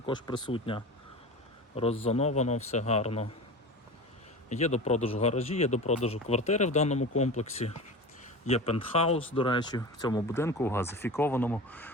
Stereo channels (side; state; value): both; normal; correlation 0.31